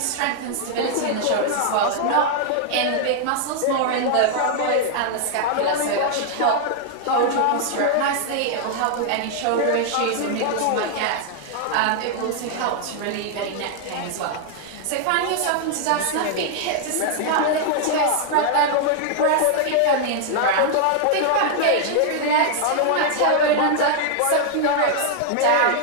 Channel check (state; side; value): different; both; correlation -0.01